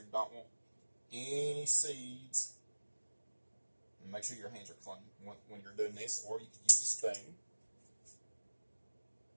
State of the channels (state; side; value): inverted; both; correlation -1.00